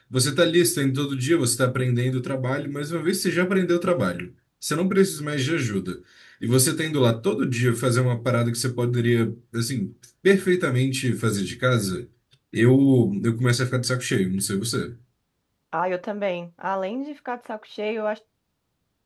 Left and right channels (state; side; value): identical; both; correlation 1.00